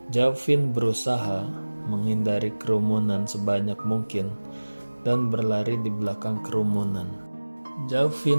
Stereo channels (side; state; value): both; inverted; correlation -1.00